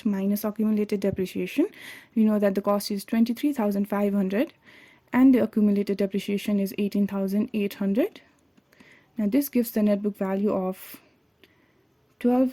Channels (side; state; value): both; identical; correlation 1.00